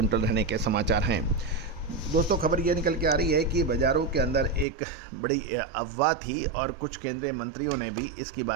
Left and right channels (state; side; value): drops out; left; at 4.7 s